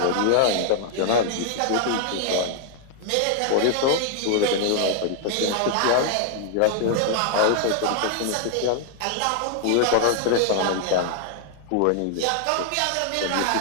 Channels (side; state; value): both; different; correlation 0.00